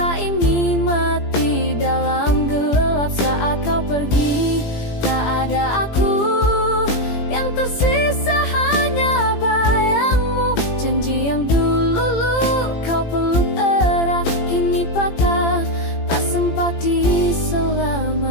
ini mati dalam gelap. Saat kau pergi, tak ada aku, yang tersisa hanya bayangmu. Janji yang dulu kau peluk erat, kini patah, tak sempat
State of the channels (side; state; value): right; late; 17 ms